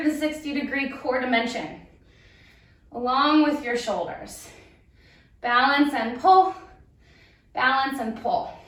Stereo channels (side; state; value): both; identical; correlation 1.00